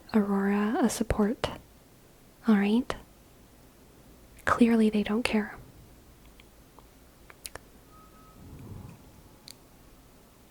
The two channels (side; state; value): both; identical; correlation 1.00